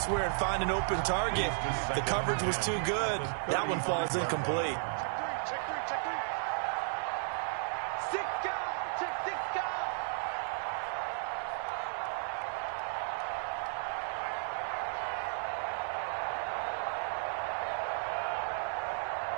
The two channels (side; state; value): left; silent; digital silence